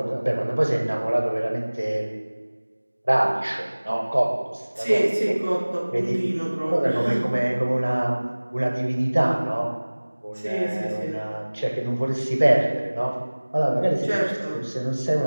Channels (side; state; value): both; inverted; correlation -1.00